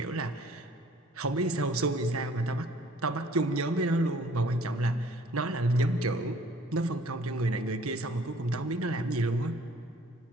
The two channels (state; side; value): normal; both; correlation 0.55